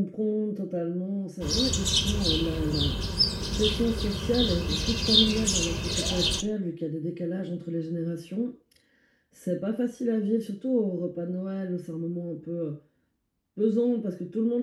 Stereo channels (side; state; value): both; identical; correlation 1.00